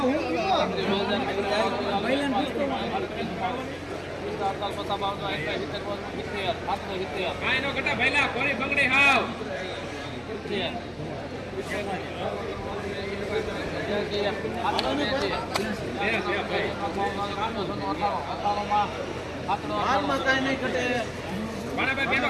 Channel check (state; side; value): identical; both; correlation 1.00